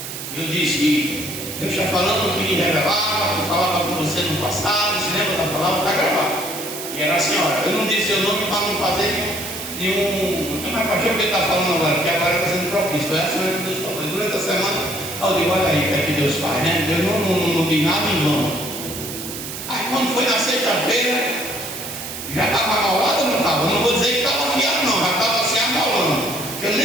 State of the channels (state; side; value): noise; right; hiss, 8 dB below the sound